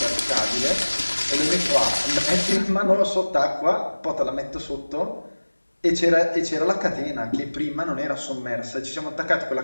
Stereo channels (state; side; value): inverted; both; correlation -1.00